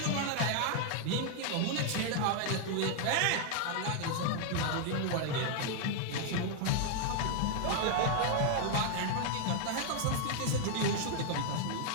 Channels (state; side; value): different; both; correlation 0.00